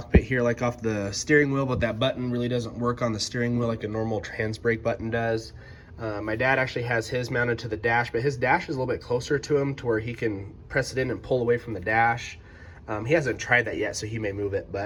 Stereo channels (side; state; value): both; identical; correlation 1.00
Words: here, like off the steering wheel, but that button really doesn't work on the steering wheel like a normal trans brake button does. My dad actually has his mounted to the dash, but his dash is a little bit closer to him to where he can press it in and pull away from the dash. He hasn't tried that yet, so he may move it,